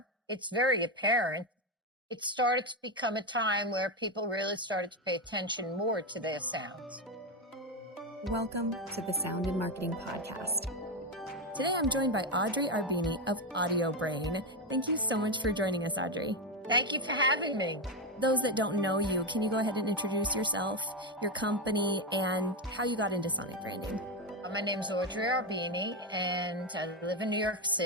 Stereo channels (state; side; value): normal; both; correlation 0.09